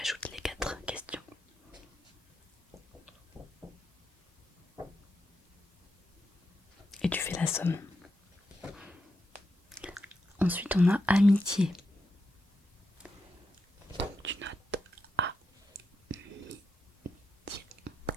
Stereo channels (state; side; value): normal; both; correlation 0.85